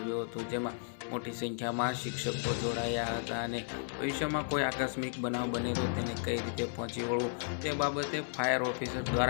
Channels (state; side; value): silent; right; 55 dB below the other